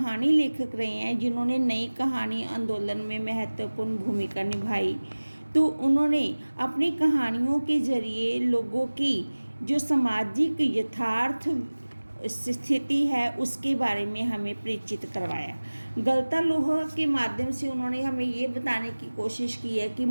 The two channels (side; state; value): both; inverted; correlation -1.00